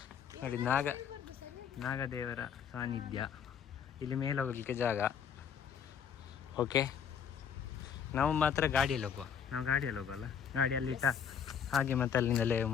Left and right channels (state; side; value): quieter; right; 7.8 dB